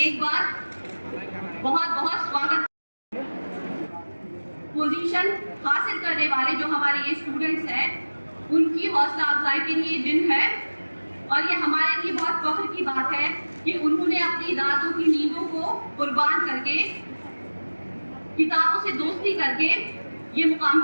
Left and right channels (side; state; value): both; inverted; correlation -1.00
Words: बार बहुत बहुत स्वागत। पोजीशन हासिल करने वाले जो हमारे ये स्टूडेंट्स हैं, उनकी हौसला अफजाई के लिए दिन है और ये हमारे लिए बहुत फख्र की बात है कि उन्होंने अपनी रातों की नींदों को कुर्बान करके, किताबों से दोस्ती करके ये मुकाम